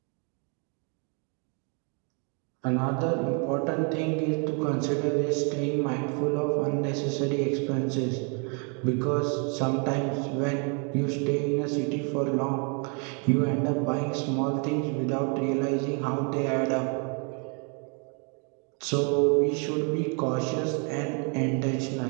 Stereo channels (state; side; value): quieter; left; 37.3 dB